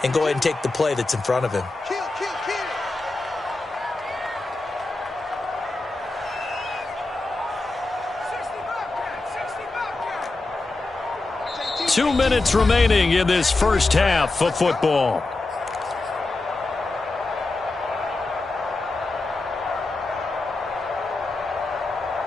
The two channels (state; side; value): quieter; right; 3.2 dB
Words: and go ahead and take the play that's in front of him. 2 minutes remaining in this first half of football.